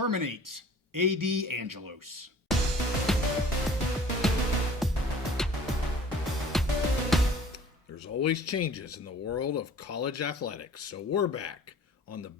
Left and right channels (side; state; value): both; normal; correlation 0.49